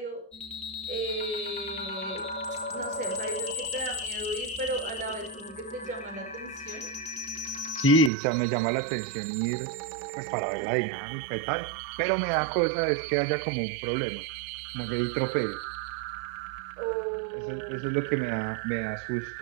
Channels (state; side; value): drops out; left; at 8.1 s